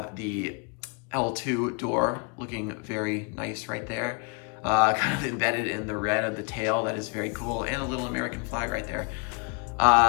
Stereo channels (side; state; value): right; quieter; 34.6 dB